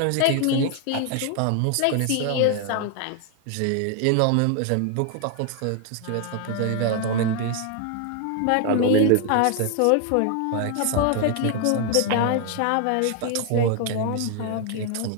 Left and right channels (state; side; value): different; both; correlation 0.00